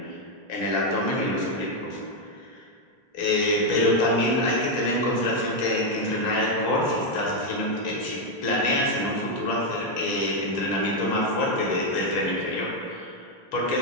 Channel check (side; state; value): right; late; 3.3 ms